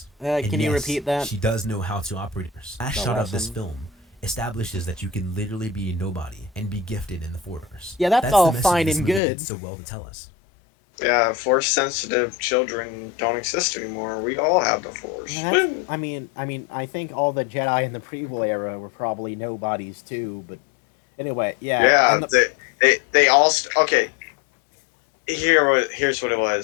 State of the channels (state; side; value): drops out; right; at 9.2 s